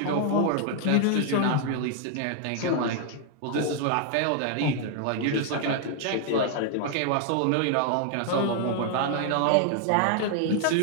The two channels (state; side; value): different; both; correlation 0.00